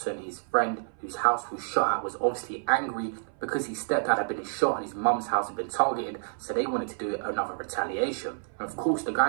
his friend whose house was shot at, was obviously angry because his stepdad had been shot and his mum's house had been targeted, so they wanted to do another retaliation. And of course the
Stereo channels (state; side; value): silent; left; 59 dB below the other